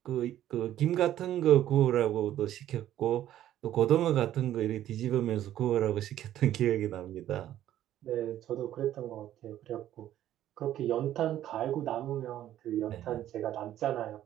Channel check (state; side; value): quieter; left; 12.3 dB